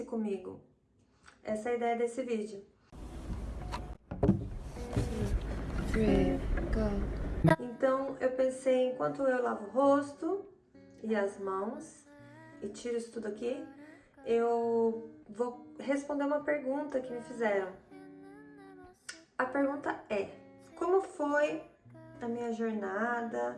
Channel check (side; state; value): both; identical; correlation 1.00